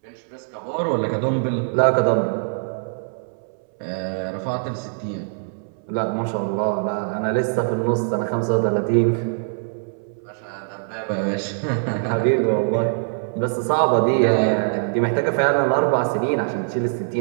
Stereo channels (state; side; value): silent; left; 64 dB below the other